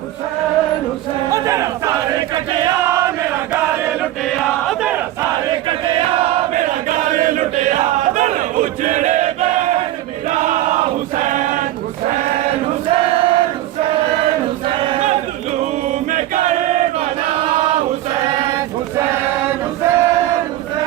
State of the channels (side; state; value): left; quieter; 14.5 dB